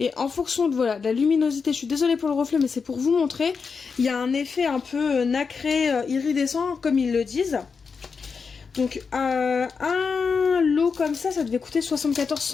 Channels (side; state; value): right; quieter; 5.4 dB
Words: en fonction de, de la luminosité, je suis désolée pour le reflet, mais c'est pour vous montrer, il y a un effet un peu nacré, iridescent, comme ils le disent. Donc un lot comme ça devait coûter 74